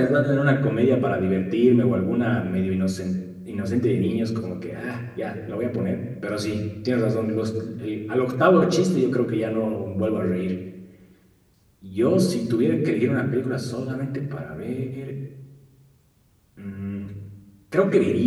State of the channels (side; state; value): both; identical; correlation 1.00